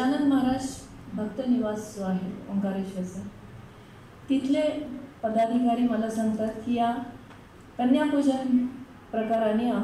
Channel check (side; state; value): both; identical; correlation 1.00